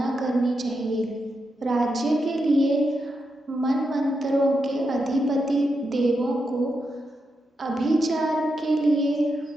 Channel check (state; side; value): normal; both; correlation 0.85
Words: करनी चाहिए। राज्य के लिए मनवंतरों के अधिपति देवों को, अभिचार के लिए